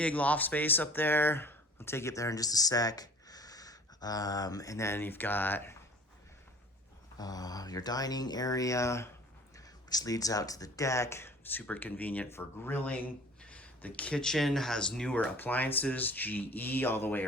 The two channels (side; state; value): both; normal; correlation 0.47